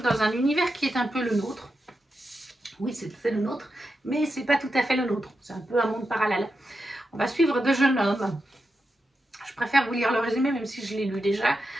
dans un univers qui est un peu le nôtre. Oui, c'est le nôtre, mais c'est pas tout à fait le nôtre. C'est un peu un monde parallèle. On va suivre deux jeunes hommes. Je préfère vous lire le résumé, même si je l'ai lu déjà.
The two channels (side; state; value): both; normal; correlation 0.88